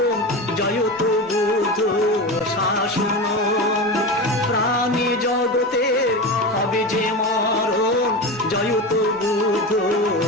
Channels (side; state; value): both; normal; correlation 0.23